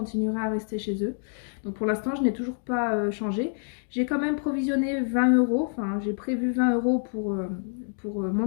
à rester chez eux. Donc pour l'instant je n'ai toujours pas changé. J'ai quand même provisionné 20 euros, enfin j'ai prévu 20 euros pour mon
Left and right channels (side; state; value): right; silent; digital silence